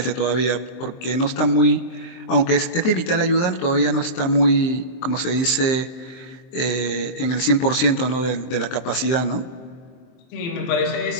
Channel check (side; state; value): right; late; 23 ms